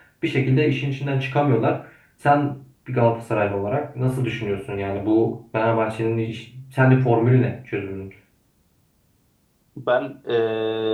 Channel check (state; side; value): identical; both; correlation 1.00